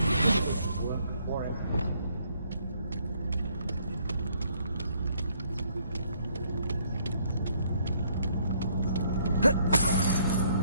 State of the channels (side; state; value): both; inverted; correlation -0.67